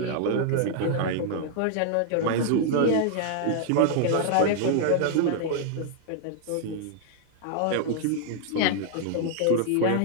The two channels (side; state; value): both; different; correlation -0.01